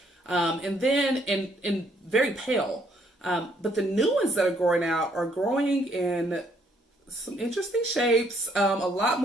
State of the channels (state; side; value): normal; both; correlation 0.68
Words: and then and very pale. But the new ones that are growing out are growing in some interesting shapes, a lot